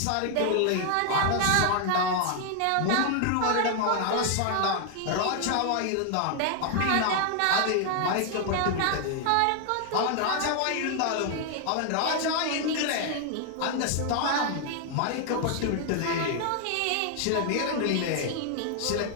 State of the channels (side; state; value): both; different; correlation 0.00